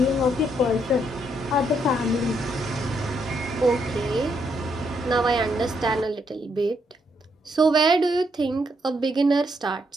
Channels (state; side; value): normal; both; correlation 0.75